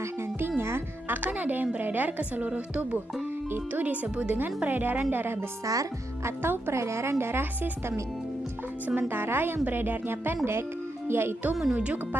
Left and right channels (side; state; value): both; normal; correlation 0.84